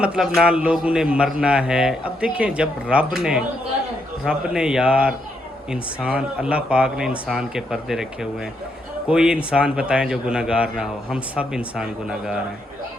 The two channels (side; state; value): both; normal; correlation 0.78